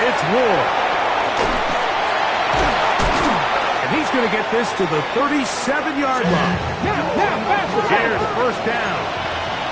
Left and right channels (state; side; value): identical; both; correlation 1.00